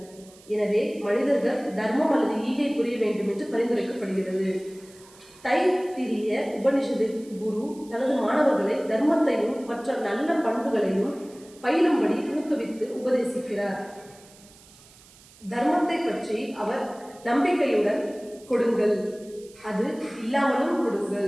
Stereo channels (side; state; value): right; noise; hiss, 24 dB below the sound